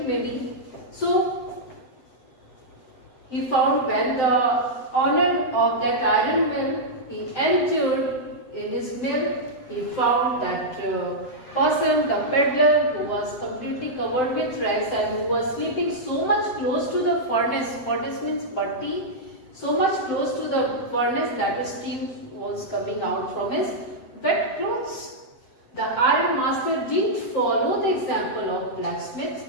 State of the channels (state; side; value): late; right; 7.8 ms